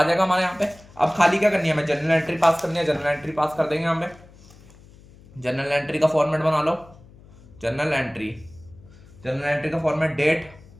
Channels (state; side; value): noise; left; hum, 23 dB below the sound